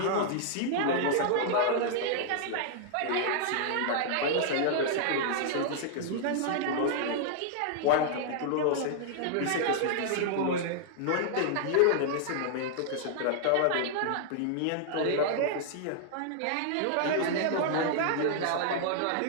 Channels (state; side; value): different; both; correlation -0.01